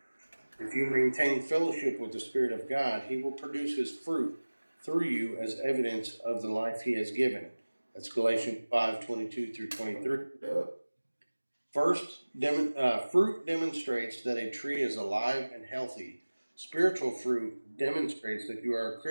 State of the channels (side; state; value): both; inverted; correlation -1.00